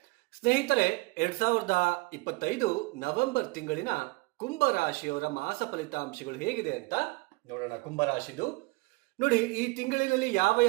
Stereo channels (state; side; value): quieter; left; 25.1 dB